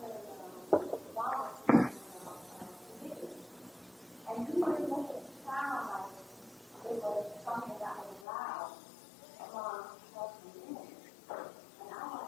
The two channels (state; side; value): drops out; right; at 8.2 s